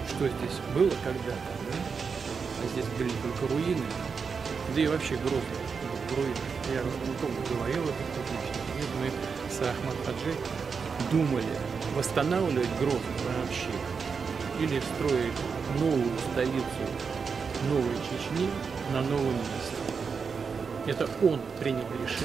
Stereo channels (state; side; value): quieter; left; 5.6 dB